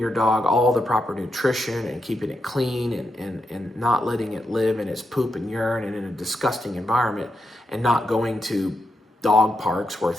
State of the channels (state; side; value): normal; both; correlation 0.84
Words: dog all the proper nutrition and keeping it clean and not letting it live in its poop and urine and in a disgusting environment, and not going to dog parks where